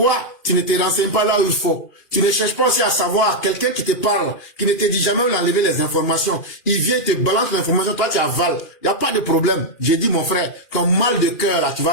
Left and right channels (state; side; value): late; right; 2.4 ms